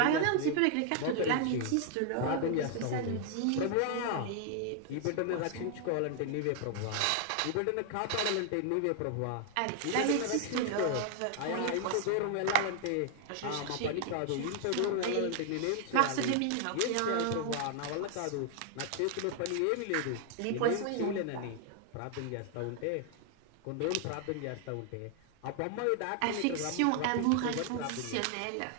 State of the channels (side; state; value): both; different; correlation 0.00